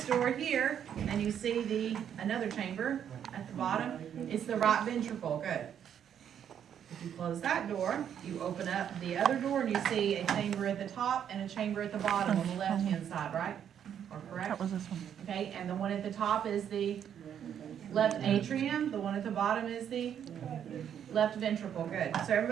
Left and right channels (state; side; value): quieter; left; 9.0 dB